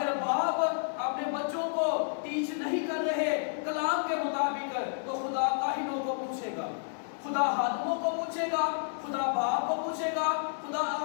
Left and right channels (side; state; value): right; silent; digital silence